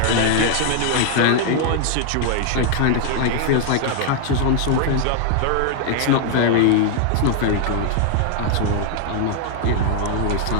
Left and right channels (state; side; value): different; both; correlation 0.00